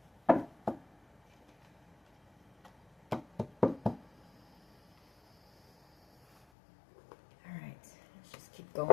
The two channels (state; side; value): drops out; right; at 6.5 s